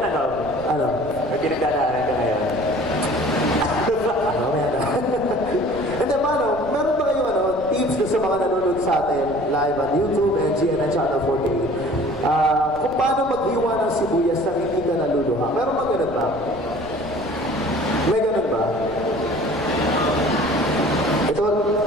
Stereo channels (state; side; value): noise; right; rumble, 17 dB below the sound